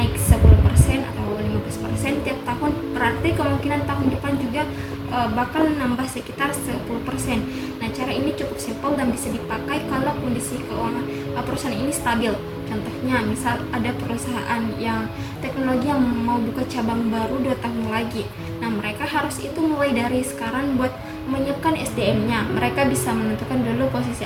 10% atau 15% tiap tahun, berarti kemungkinan tahun depan juga bakal nambah sekitar 10%. Nah, cara ini cukup simpel dan bisa dipakai kalau kondisi keuangan perusahaan ini stabil. Contohnya, misal ada perusahaan yang teknologi yang mau buka cabang baru 2 tahun lagi. Nah, mereka harus itu mulai dari sekarang buat menyiapkan SDM-nya. Mereka bisa menentukan dulu posisi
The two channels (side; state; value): both; identical; correlation 1.00